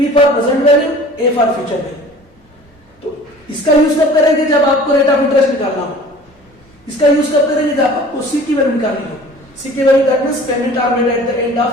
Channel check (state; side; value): normal; both; correlation 0.46